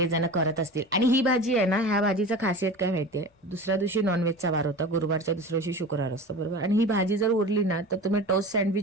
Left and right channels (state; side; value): normal; both; correlation 0.33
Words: करत असतील. आणि ही भाजी आहे ना, ह्या भाजीचं खासियत काय माहितीये, दुसऱ्या दिवशी नॉनव्हेजचा वार होता, गुरुवारच्या दुसऱ्या दिवशी शुक्रवार असतो, बरोबर. आणि ही भाजी जर उरली ना तर तुम्ही टोस्ट